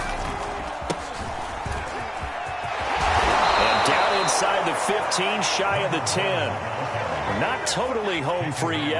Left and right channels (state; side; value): identical; both; correlation 1.00